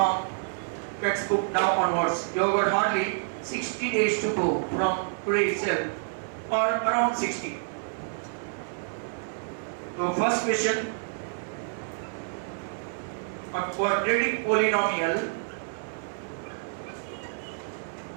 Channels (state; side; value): silent; left; 59 dB below the other